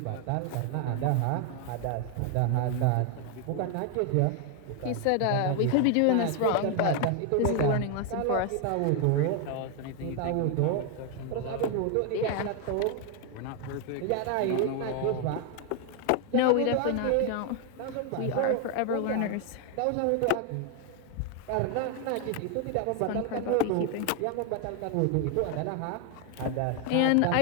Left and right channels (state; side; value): different; both; correlation 0.01